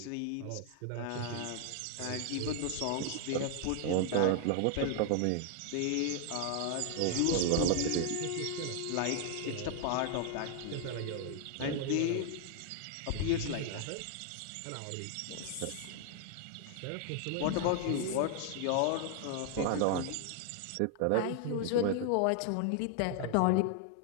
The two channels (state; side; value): different; both; correlation 0.00